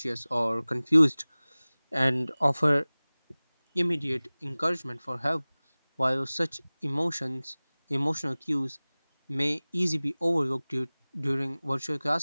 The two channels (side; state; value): both; inverted; correlation -1.00